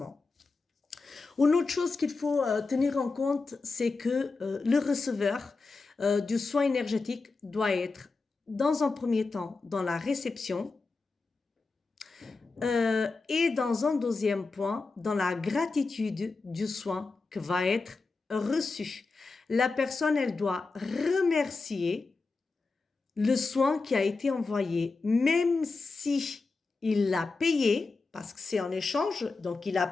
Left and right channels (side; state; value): right; quieter; 4.0 dB